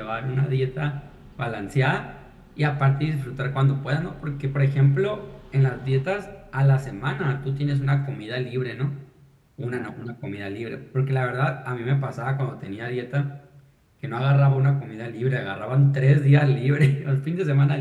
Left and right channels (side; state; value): both; identical; correlation 1.00